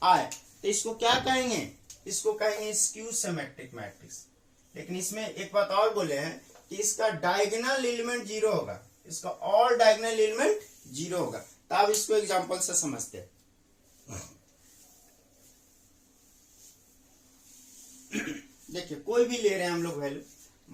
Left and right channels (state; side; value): identical; both; correlation 1.00